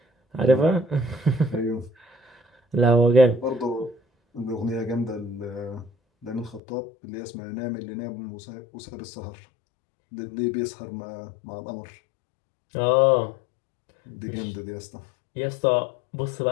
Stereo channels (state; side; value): drops out; right; at 6.6 s